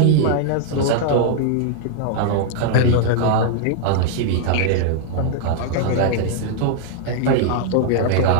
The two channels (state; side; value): different; both; correlation 0.00